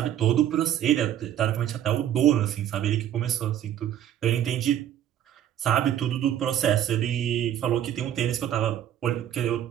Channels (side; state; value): left; quieter; 10.9 dB